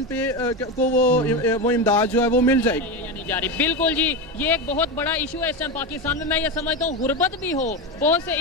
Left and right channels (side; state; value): both; normal; correlation 0.16